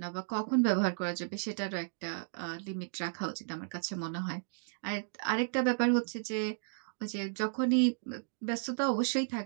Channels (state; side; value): silent; left; digital silence